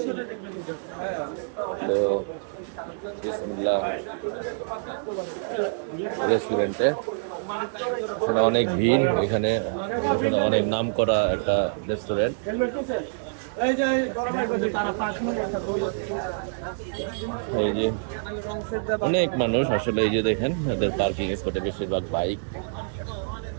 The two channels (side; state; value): left; silent; digital silence